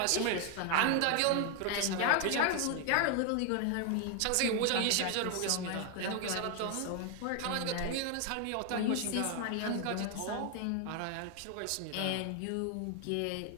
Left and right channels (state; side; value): different; both; correlation 0.01